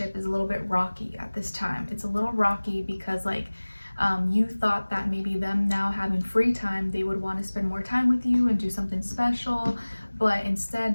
is a little bit rocky at this time. It's a little rocky because like you thought that maybe them now having free time, they would want to spend more time with you and do something special, but instead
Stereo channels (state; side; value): inverted; both; correlation -1.00